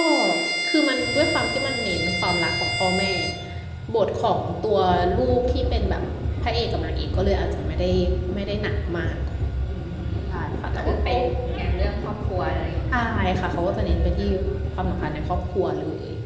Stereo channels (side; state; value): both; identical; correlation 1.00